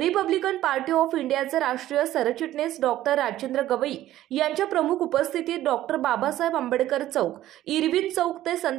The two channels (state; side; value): quieter; left; 13.9 dB